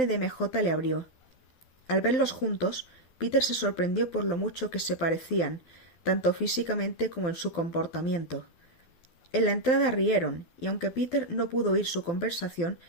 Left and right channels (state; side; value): late; right; 12 ms